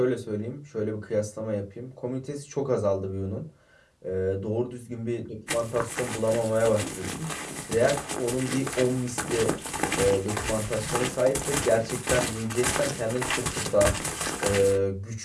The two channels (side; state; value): both; identical; correlation 1.00